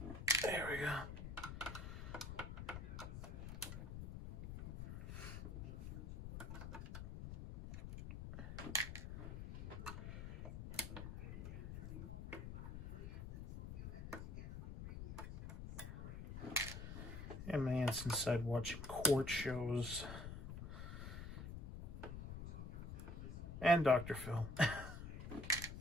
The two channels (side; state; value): left; noise; rumble, 7 dB below the sound